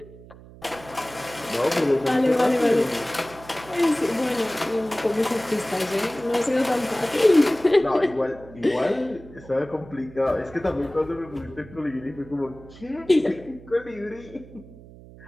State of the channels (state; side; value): noise; right; hum, 19 dB below the sound